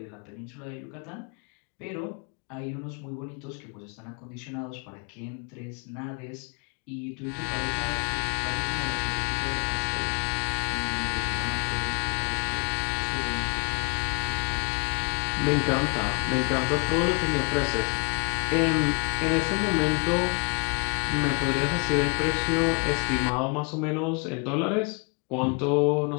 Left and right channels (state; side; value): quieter; right; 34.9 dB